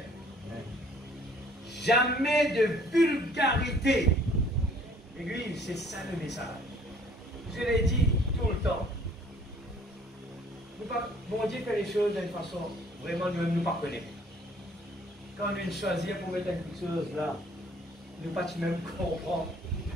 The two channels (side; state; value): both; normal; correlation 0.57